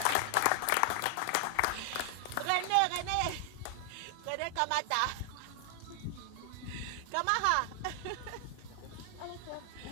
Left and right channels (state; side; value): different; both; correlation 0.00